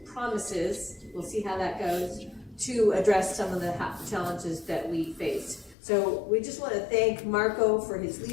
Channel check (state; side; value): drops out; right; at 5.8 s